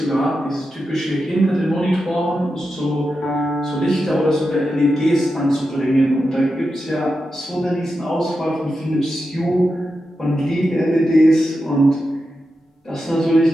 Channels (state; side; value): normal; both; correlation 0.89